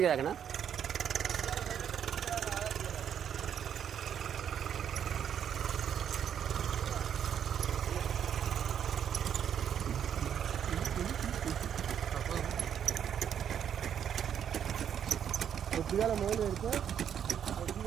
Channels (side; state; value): left; quieter; 8.8 dB